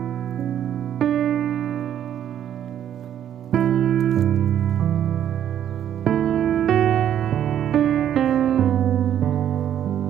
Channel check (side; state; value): left; quieter; 10.2 dB